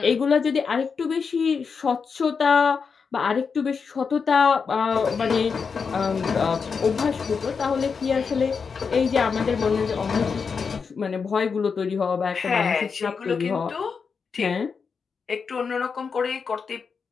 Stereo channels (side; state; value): right; quieter; 5.6 dB